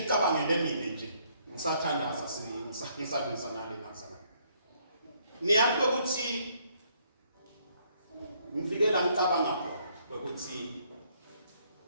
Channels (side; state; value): both; inverted; correlation -0.68